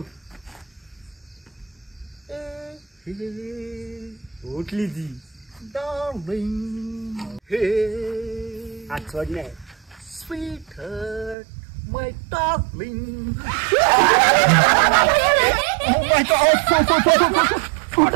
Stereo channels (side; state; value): left; drops out; at 11.4 s